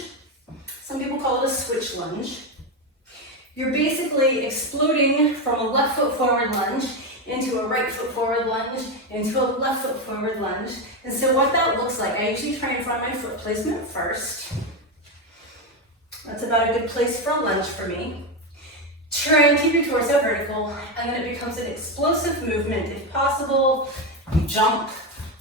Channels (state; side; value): normal; both; correlation 0.11